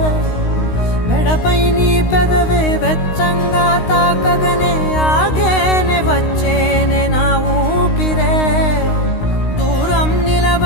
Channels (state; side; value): late; right; 16 ms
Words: మెడపై నీ పెదవే వెచ్చంగా తాకగనే ఆగేనే వచ్చేనే నా ఊపిరే దూరం